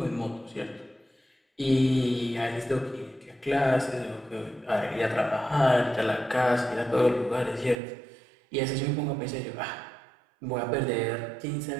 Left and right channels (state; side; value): drops out; left; at 7.8 s